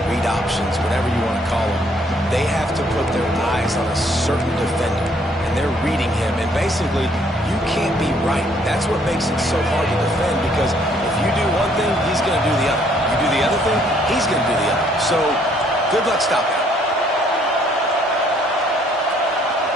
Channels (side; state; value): both; normal; correlation 0.65